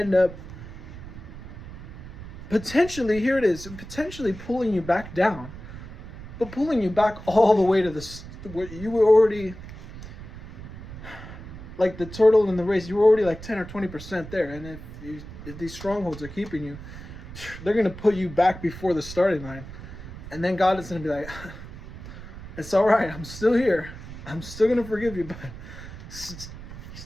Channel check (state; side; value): noise; right; rumble, 13 dB below the sound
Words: up potentially pulling you back down, but pulling you back all the way to where you were already, like the turtle in the race, you were already like 10 or 20% there. And if these strongholds are keeping you, they're going to put you back before the starting line. And then God is going to be like, it's all right, I'm still here. I'm still going to forgive you, but